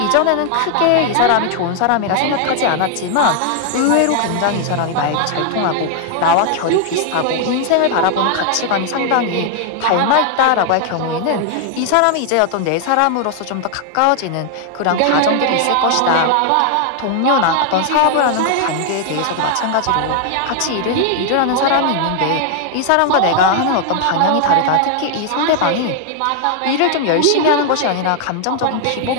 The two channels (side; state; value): both; different; correlation 0.00